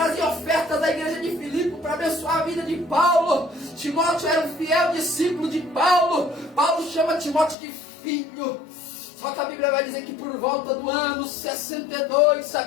ofertas da igreja de Filipe para abençoar a vida de Paulo. Timóteo era um fiel discípulo de Paulo. Paulo chama Timóteo de filho. Só que a Bíblia vai dizer que por volta do ano 62,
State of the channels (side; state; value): right; drops out; at 7.6 s